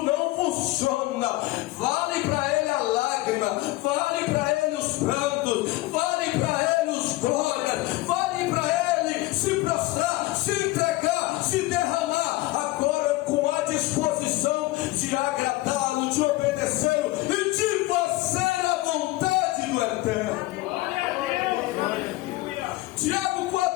não funciona. Vale para ele a lágrima, vale para ele os prantos, vale para ele os glórias, vale para ele se prostrar, se entregar, se derramar, agora com a disposição de agradá-lo, de obedecê-lo e de fazer a vontade do Eterno. Tiago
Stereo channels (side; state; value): right; quieter; 19.5 dB